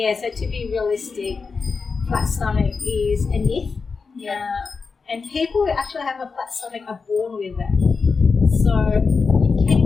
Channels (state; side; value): quieter; right; 4.8 dB